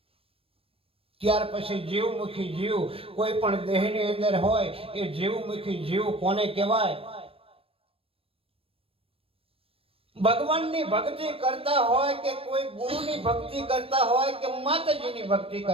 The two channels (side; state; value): left; late; 0.28 ms